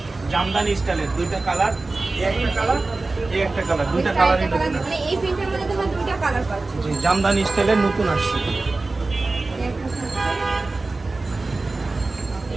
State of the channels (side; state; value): left; quieter; 3.4 dB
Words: জামদানি স্টাইলের দুইটা কালার। এই একটা কালার, এই একটা কালার, দুইটা কালারই নতুন আসছে। মানে এই প্রিন্টের মধ্যে তোমরা দুইটা কালার পাচ্ছ। জি, জামদানি স্টাইলের নতুন আসছে।